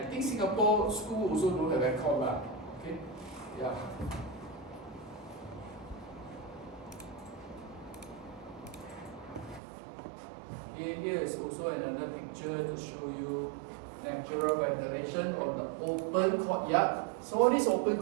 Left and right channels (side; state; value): left; drops out; at 9.6 s